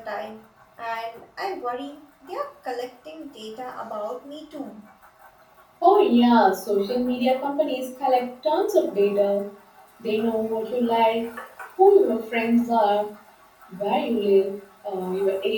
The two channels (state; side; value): identical; both; correlation 1.00